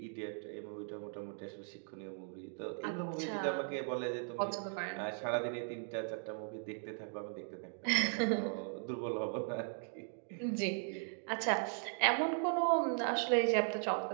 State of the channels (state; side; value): silent; left; 52 dB below the other